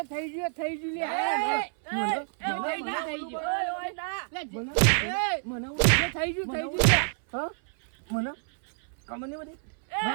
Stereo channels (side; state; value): left; silent; 59 dB below the other